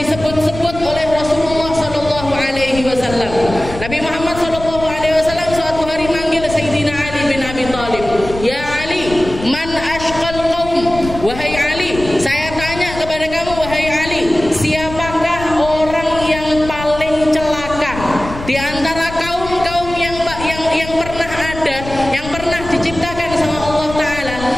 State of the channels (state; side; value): noise; left; rumble, 11 dB below the sound